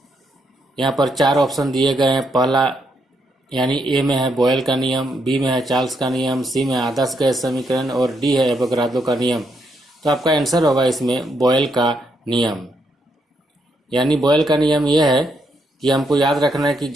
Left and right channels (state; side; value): normal; both; correlation 0.77